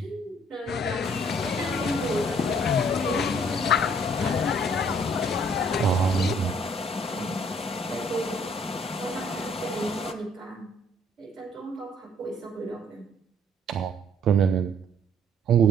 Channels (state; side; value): normal; both; correlation 0.62